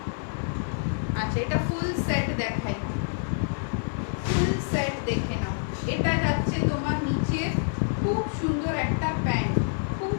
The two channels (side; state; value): right; silent; digital silence